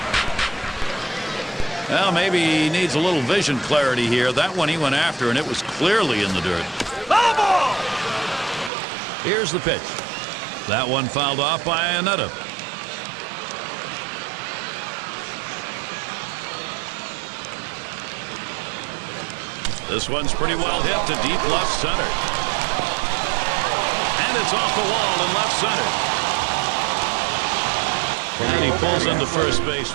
Well, maybe he needs a little vision clarity here. That one he went after, and it was clearly in the dirt. Here's the pitch. That one fouled off by Anetta. This one's pretty well hit to deep left center. And it's off the wall in left center. And he pulls into first base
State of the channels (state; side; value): drops out; left; at 8.7 s